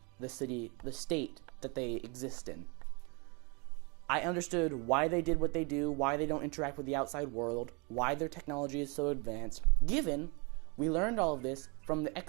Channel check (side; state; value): left; quieter; 31.5 dB